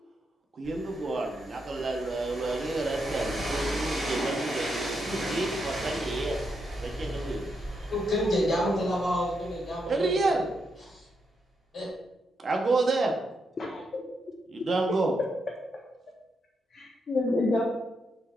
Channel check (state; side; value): normal; both; correlation 0.81